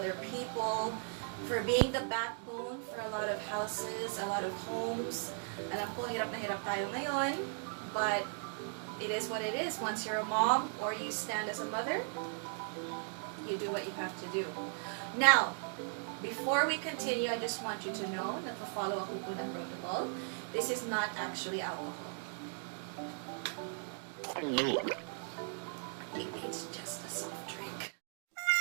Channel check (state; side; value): silent; left; 53 dB below the other